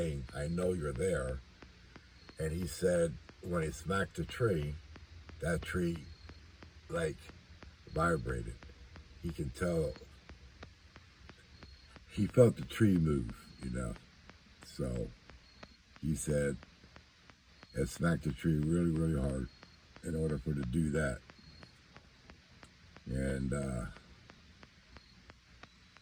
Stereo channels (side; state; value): both; identical; correlation 1.00